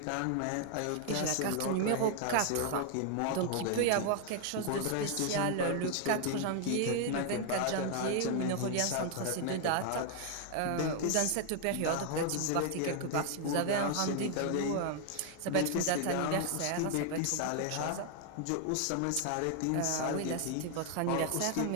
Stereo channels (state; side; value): different; both; correlation 0.00